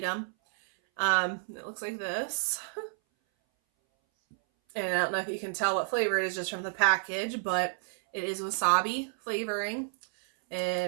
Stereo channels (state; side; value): silent; left; 58 dB below the other